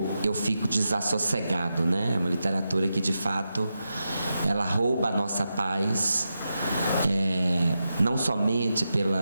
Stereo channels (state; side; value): inverted; both; correlation -0.88